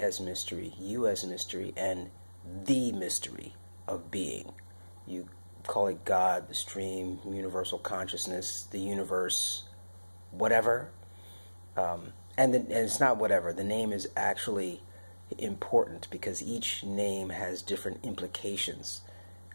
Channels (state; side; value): inverted; both; correlation -1.00